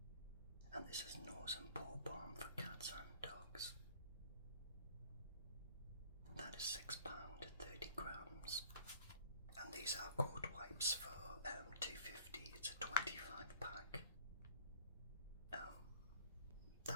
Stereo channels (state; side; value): inverted; both; correlation -0.53